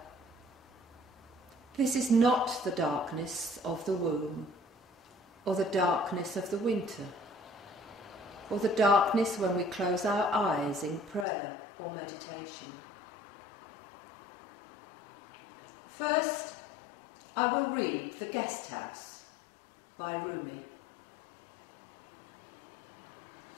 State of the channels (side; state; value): right; drops out; at 11.2 s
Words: This is not the darkness of the womb, or the darkness of the winter, or the darkness when we close our eyes in prayer or meditation. First, I will read The Guest House by Rumi.